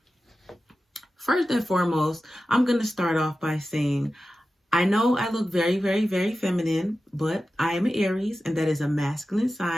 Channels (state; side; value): normal; both; correlation 0.93